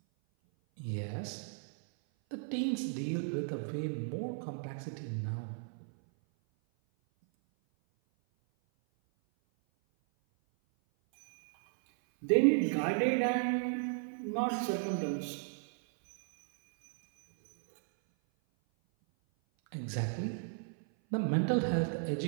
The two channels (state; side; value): silent; left; 55 dB below the other